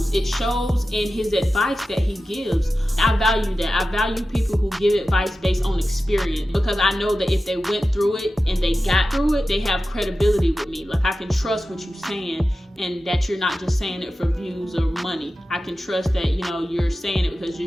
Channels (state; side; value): normal; both; correlation 0.93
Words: in his advice that he gives. I value that. I value people who give advice based on experience, because I know that if they went through it and they got through it, they have credibility with me. Like, I can trust what you're saying, and that you're not just saying it for views or money. I can trust that, you know, you're saying it because